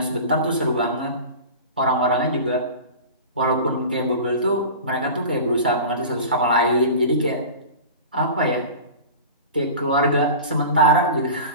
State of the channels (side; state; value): both; inverted; correlation -0.35